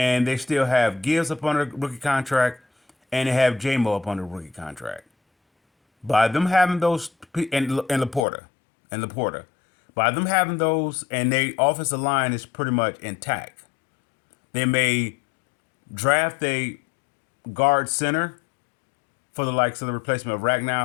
they still have Gibbs up on a rookie contract, and they have J-Mo up on a rookie contract. By them having those, and Laporta, by them having those, and their offensive line is pretty much intact. They may draft a guard center for the likes of the replacement of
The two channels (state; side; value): drops out; right; at 8.2 s